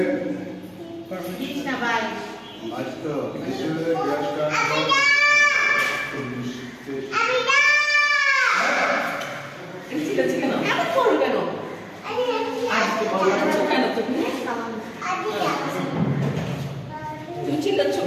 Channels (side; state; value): both; identical; correlation 1.00